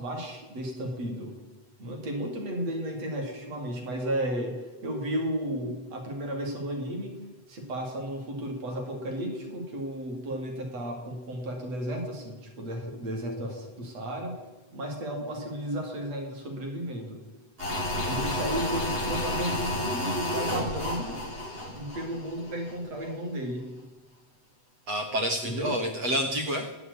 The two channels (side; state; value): left; late; 8.0 ms